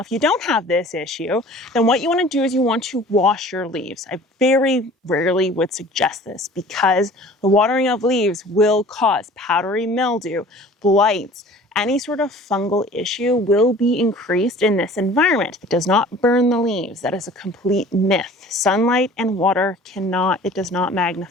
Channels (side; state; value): both; normal; correlation 0.47